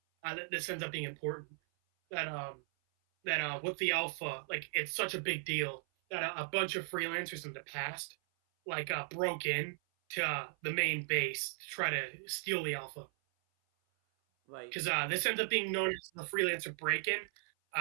That this ends up being important. That with the alpha, like it's such a big deal that a bunch of freelancers in the past, broke in to the main base to try to steal the alpha. Right. Because this ends up being known as the freelancer break-in.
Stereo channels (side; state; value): left; silent; 53 dB below the other